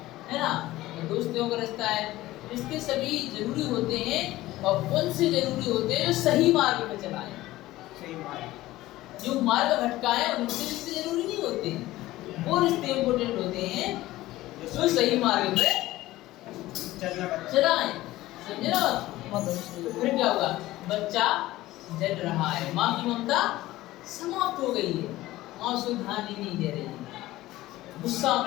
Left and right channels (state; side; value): quieter; right; 16.8 dB